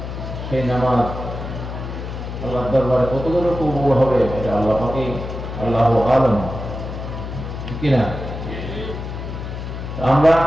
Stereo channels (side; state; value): left; noise; hum, 7 dB below the sound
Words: সেই নামাজ আল্লাহ দরবারে কতগুলো কবুল হবে এটা আল্লাহ পাকেই আল্লাহ আলম, ঠিক কিনা? আমরা